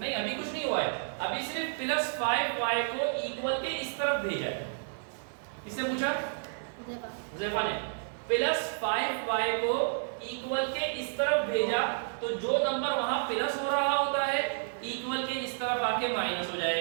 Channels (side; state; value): left; silent; 57 dB below the other